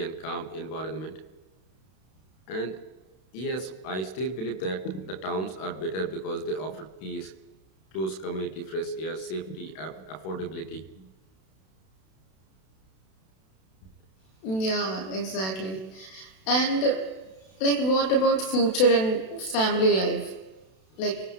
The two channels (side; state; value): right; late; 32 ms